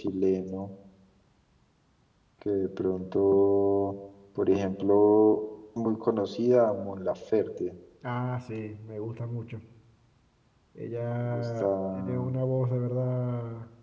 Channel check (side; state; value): both; identical; correlation 1.00